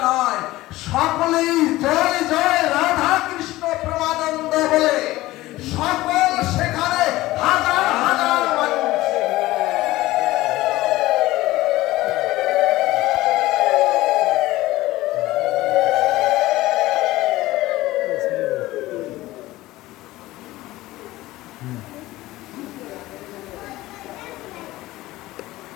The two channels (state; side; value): quieter; right; 17.6 dB